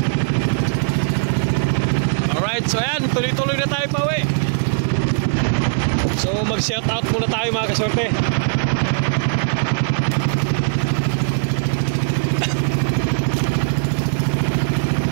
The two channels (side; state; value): left; silent; 59 dB below the other